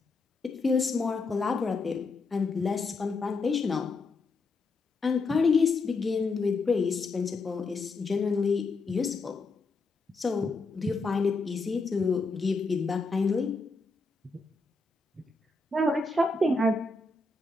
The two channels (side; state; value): right; quieter; 3.6 dB